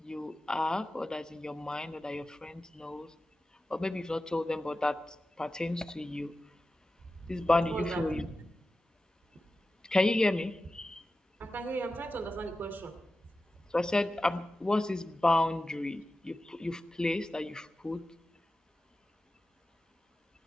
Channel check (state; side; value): normal; both; correlation 0.94